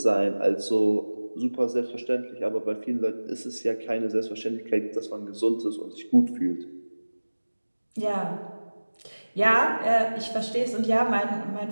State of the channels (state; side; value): inverted; both; correlation -1.00